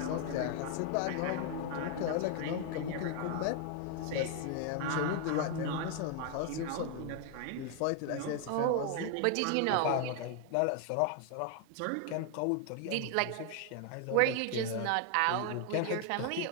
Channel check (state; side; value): different; both; correlation 0.00